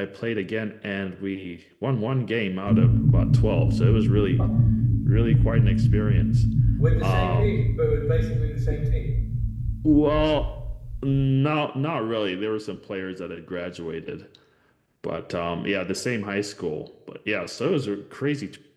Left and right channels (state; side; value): identical; both; correlation 1.00